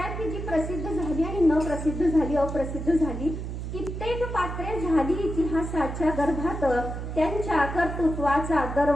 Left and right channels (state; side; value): noise; right; hum, 6 dB below the sound